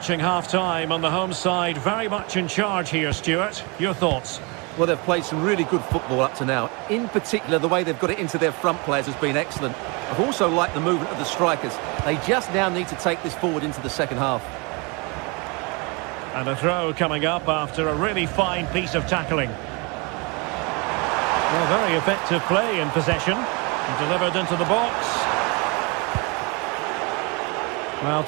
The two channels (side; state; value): left; quieter; 29.6 dB